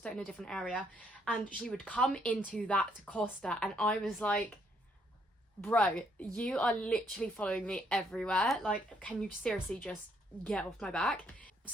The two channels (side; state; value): both; normal; correlation 0.70